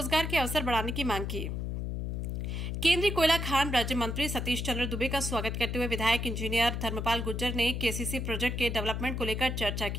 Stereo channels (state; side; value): noise; left; hum, 3 dB below the sound